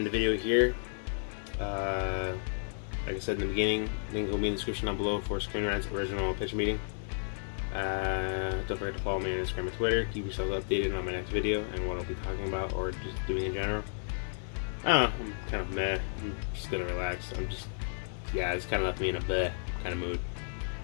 the video here. Like I said in the beginning, link will be in the description down below for Screen Rant's original pitch meeting. Don't forget to follow me on Instagram and Twitter. Keep yourselves updated on my next video and what I'll be talking about or just doing in general. I don't know, I'm kind of meh. I'm just gonna relax. It's kind of left me in a bleh kind of mood.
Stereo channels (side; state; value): right; silent; digital silence